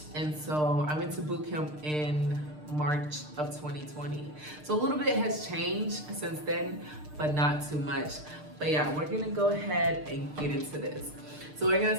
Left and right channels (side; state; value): left; late; 6.6 ms